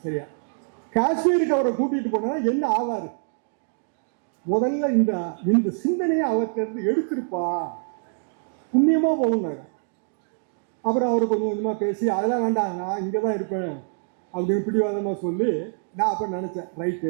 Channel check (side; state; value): left; silent; digital silence